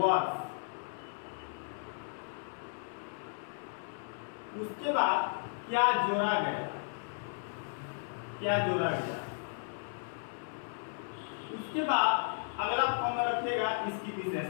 उसके बाद क्या जोड़ा गया, क्या जोड़ा गया। उसके बाद अगला फॉर्म में रखिएगा इसकी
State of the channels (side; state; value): right; silent; digital silence